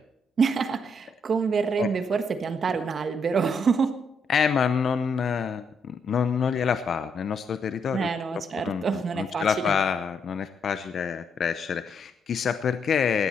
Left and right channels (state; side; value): normal; both; correlation 0.75